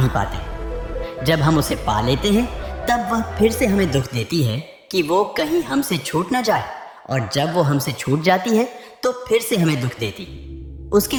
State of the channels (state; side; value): identical; both; correlation 1.00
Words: पाते। जब हम उसे पा लेते हैं तब वह फिर से हमें दुख देती है कि वो कहीं हमसे छूट ना जाए, और जब वो हमसे छूट जाती है तो फिर से हमें दुख देती। उसके